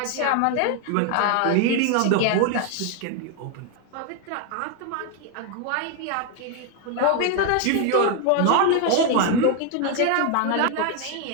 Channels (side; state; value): both; different; correlation 0.01